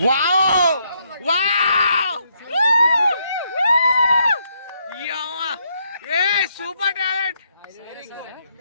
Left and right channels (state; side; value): inverted; both; correlation -0.75